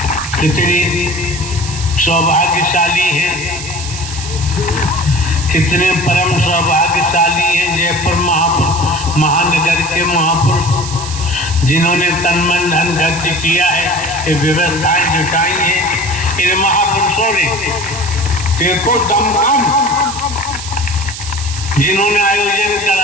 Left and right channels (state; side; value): noise; right; hiss, 9 dB below the sound